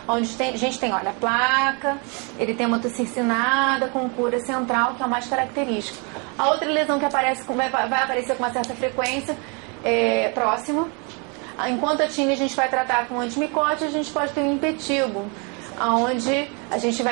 onde a gente tem, olha, a placa, eritema circinada com cura central, que é o mais característico. A outra lesão que aparece, vai aparecer com uma certa frequência, próximo. Enquanto a tínia a gente vai tratar com antimicótico, a gente pode ter um impetigo, onde a gente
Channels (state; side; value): quieter; left; 33.7 dB